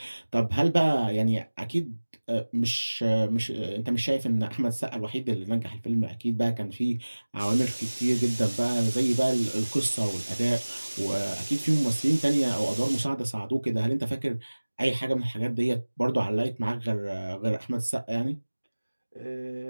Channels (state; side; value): inverted; both; correlation -1.00